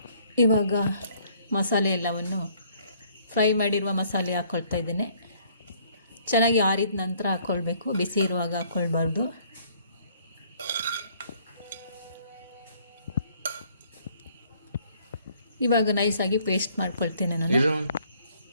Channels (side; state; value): both; inverted; correlation -0.62